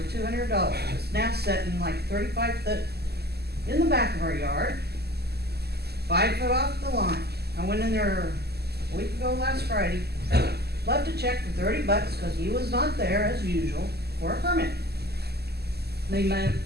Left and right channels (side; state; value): left; late; 0.47 ms